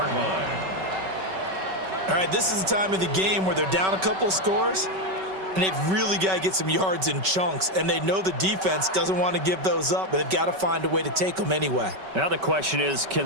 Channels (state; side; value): late; left; 5.3 ms